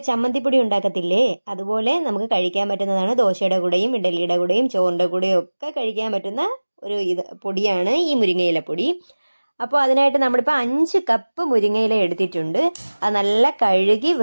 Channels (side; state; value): both; inverted; correlation -1.00